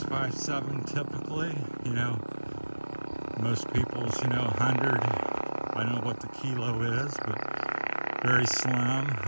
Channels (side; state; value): both; inverted; correlation -1.00